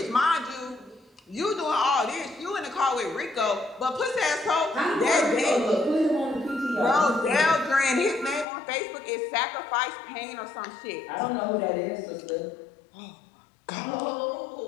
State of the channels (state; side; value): drops out; right; at 8.5 s